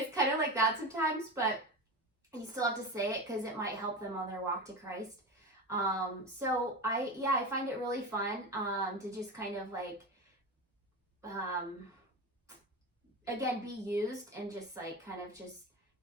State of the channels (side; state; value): both; normal; correlation 0.24